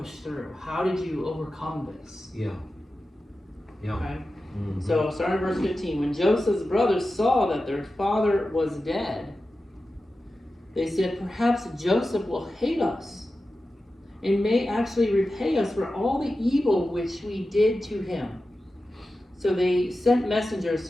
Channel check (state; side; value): normal; both; correlation 0.93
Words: through? How did you overcome this? Yeah. Yeah. Okay. Mm-hmm. So, starting in verse 15, when Joseph's brothers saw that their father was dead, they said, perhaps Joseph will hate us and may actually repay us for all the evil which we did to him. So they sent messengers